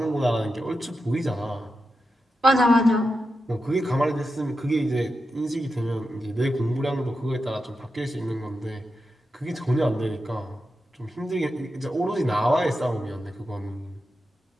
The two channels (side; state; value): both; normal; correlation 0.89